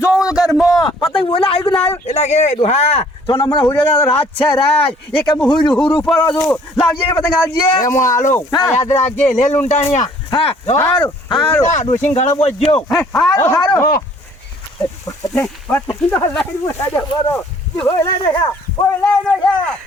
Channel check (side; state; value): both; normal; correlation 0.57